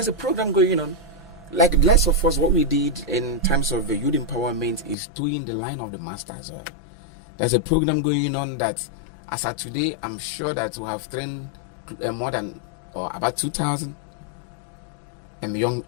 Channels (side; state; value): right; drops out; at 5.0 s